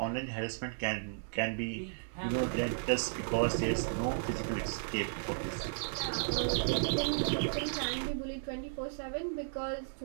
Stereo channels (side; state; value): left; silent; digital silence